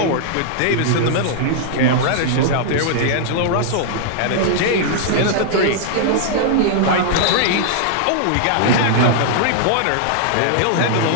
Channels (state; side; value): different; both; correlation -0.01